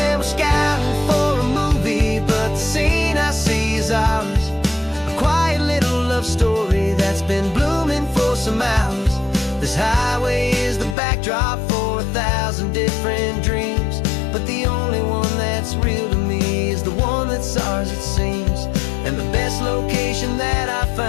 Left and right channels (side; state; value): right; drops out; at 11.0 s